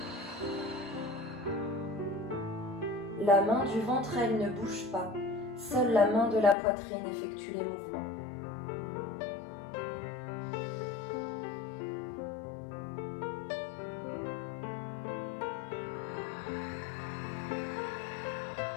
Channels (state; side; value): drops out; right; at 6.6 s